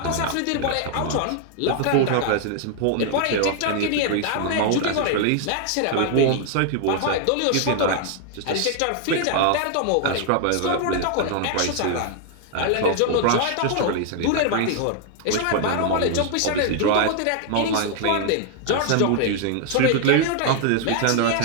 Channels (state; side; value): different; both; correlation 0.00